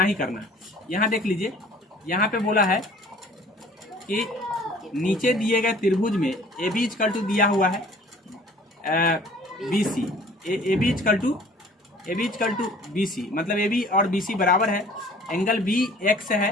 ही करना है। यहाँ देख लीजिए, यहाँ पे बोला है कि नीचे दिए गए त्रिभुज में ए बी इक्वल टू दिया हुआ है B C, A B equal to B C, मतलब ए बी और बी सी बराबर है। एंगल बी एक्स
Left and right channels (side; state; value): both; normal; correlation 0.51